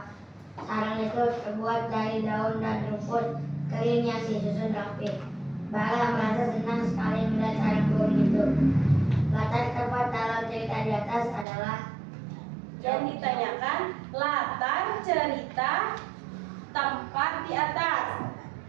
Sarang itu terbuat dari daun dan rumput kering yang disusun rapi. Bara merasa senang sekali melihat sarang burung itu. Latar tempat dalam cerita di atas adalah Yang ditanyakan latar cerita tempat di atas.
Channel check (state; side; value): drops out; left; at 11.5 s